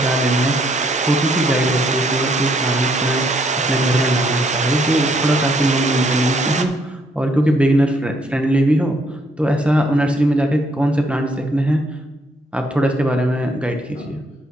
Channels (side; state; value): both; normal; correlation 0.70